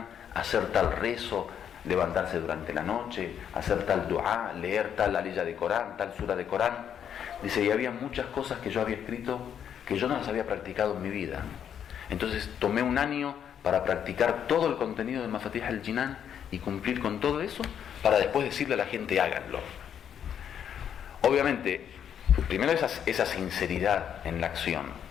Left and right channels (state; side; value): quieter; right; 8.8 dB